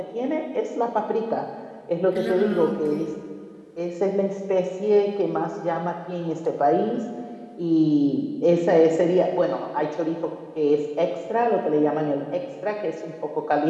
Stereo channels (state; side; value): identical; both; correlation 1.00